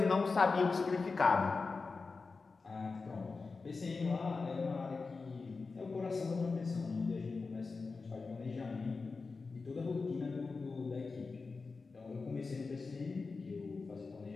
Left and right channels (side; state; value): right; quieter; 4.3 dB